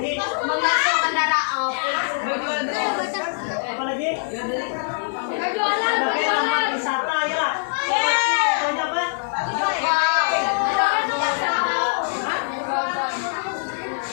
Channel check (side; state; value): right; silent; digital silence